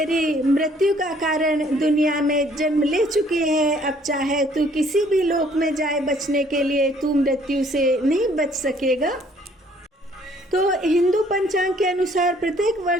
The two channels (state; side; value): normal; both; correlation 0.61